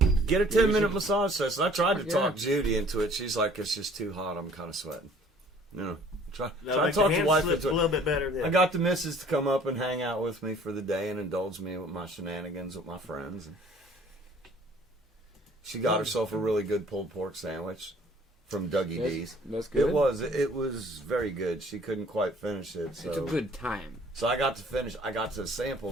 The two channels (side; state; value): both; normal; correlation 0.54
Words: Get a 10-minute massage session. I tried to Yeah. talk Judy into it. She's like, it's just too hot. I'm kind of sweating. No. Try No, to like talk the the hand wife slips into a it. little bit better. Yeah. I got the missus to come up and hang out with me for the day and indulge me with my shenanigans with my friends. And she got herself a really good pulled pork sandwich from Dougie D's. that's good. It was very good. She couldn't quite finish it, so It's a good time. so I got to finish. I got to sample